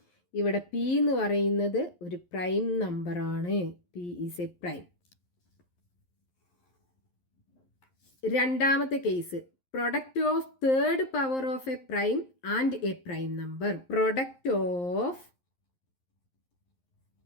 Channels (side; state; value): right; late; 11 ms